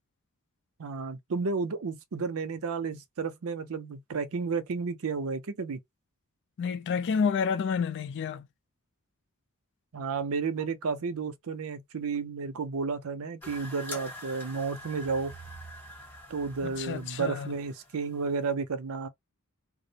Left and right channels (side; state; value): both; normal; correlation -0.02